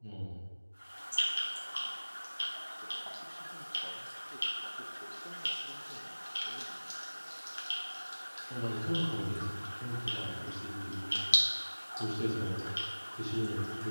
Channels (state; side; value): inverted; both; correlation -1.00